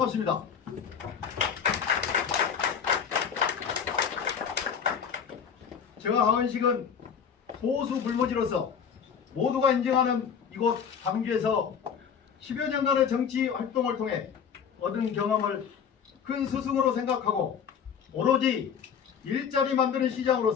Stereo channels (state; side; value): quieter; right; 7.3 dB